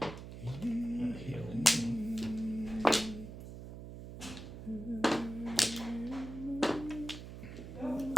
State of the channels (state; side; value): noise; right; hum, 11 dB below the sound